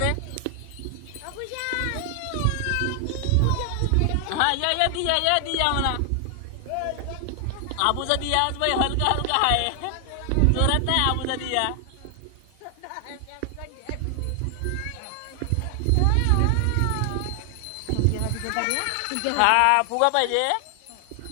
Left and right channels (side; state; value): both; different; correlation 0.00